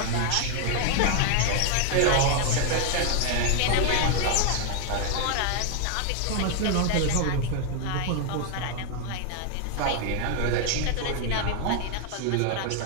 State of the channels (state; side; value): different; both; correlation 0.00